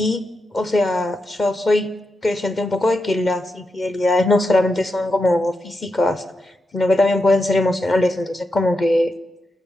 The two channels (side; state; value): both; normal; correlation 0.86